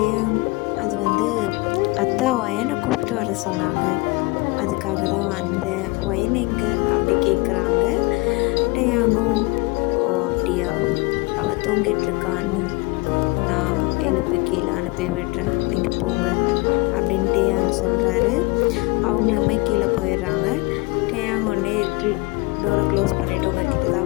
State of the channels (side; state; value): right; quieter; 25.0 dB